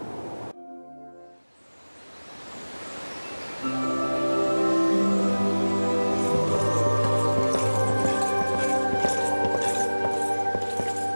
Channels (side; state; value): both; inverted; correlation -1.00